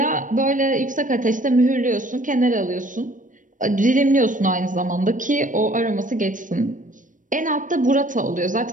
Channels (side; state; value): left; late; 0.38 ms